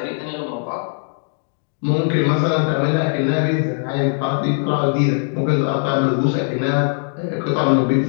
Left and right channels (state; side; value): silent; right; digital silence